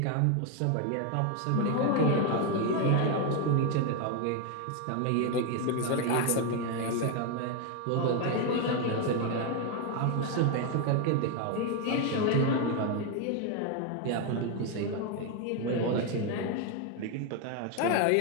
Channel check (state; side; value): different; both; correlation 0.01